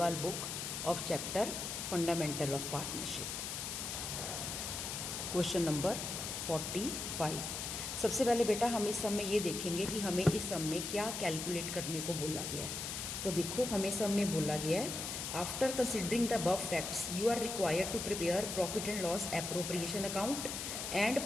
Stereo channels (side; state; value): left; noise; hiss, 4 dB below the sound